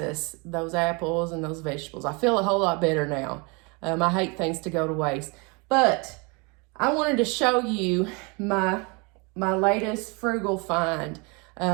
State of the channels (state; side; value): quieter; left; 30.0 dB